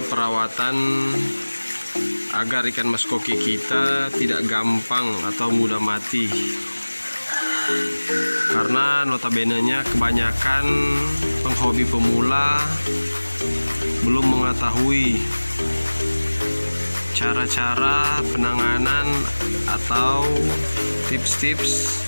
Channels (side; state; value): both; inverted; correlation -1.00